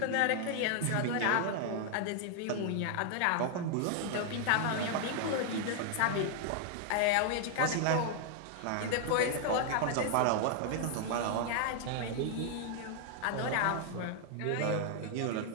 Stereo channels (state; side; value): different; both; correlation 0.00